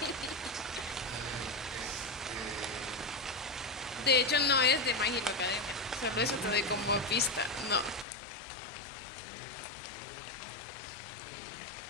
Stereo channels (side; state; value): right; drops out; at 8.1 s